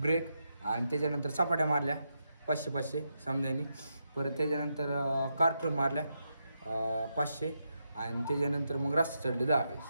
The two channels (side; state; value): both; inverted; correlation -0.83